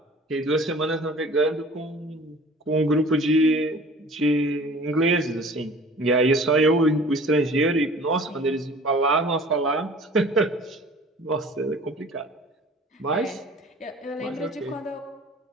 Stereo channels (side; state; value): both; normal; correlation 0.46